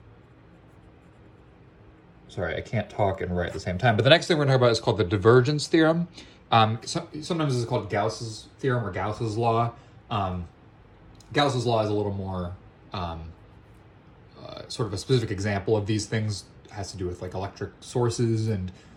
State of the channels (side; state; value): both; identical; correlation 1.00